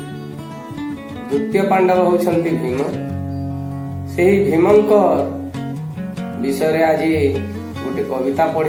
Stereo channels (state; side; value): identical; both; correlation 1.00